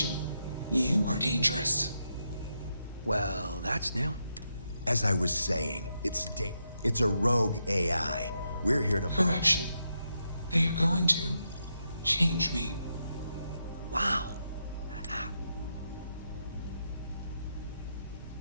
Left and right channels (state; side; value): inverted; both; correlation -0.83